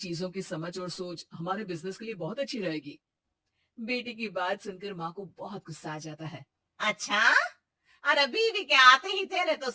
की समझ और सोच हमारे बिजनेस के लिए बहुत अच्छी रहेगी। बेटी की बात सुनकर माँ को बहुत गुस्सा आ जाता है। अच्छा। अरे बीवी के आते ही तेरे तो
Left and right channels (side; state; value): both; identical; correlation 1.00